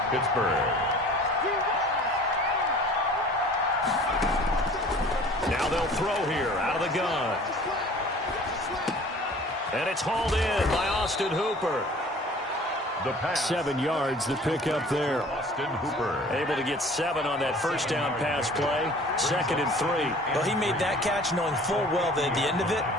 Pittsburgh. Now they'll throw here out of the gun. And it's hauled in by Austin Hooper. The pass. 7 yards, the pickup there. Austin Hooper. Able to get 7 on that first down pass play. 2nd and 3. Well, he made that catch knowing full well that at the end of it,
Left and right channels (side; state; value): both; normal; correlation 0.48